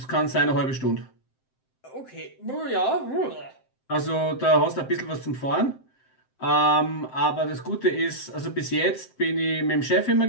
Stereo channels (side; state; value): right; late; 7.7 ms